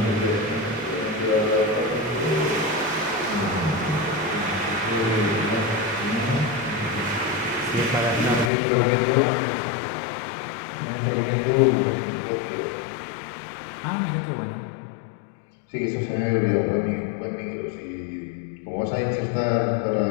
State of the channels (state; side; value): drops out; right; at 8.5 s